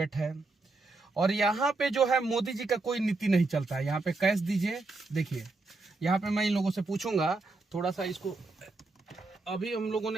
है। और यहाँ पे जो है मोदी जी का कोई नीति नहीं चलता है। यहाँ पे कैश दीजिए, देखिए यहाँ पे मैं इन लोगों से पूछूंगा थोड़ा सा इसको। अभी हम लोगों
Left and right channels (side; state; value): left; quieter; 3.4 dB